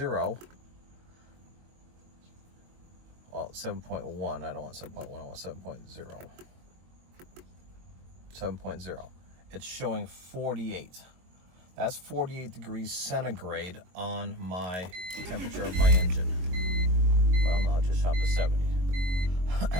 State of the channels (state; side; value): late; left; 22 ms